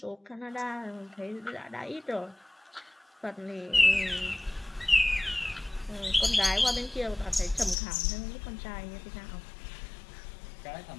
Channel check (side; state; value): right; drops out; at 7.8 s